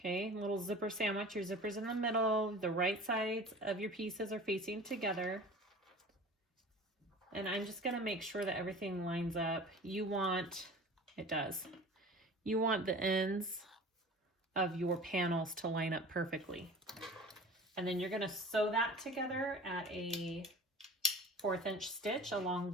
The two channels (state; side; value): normal; both; correlation 0.40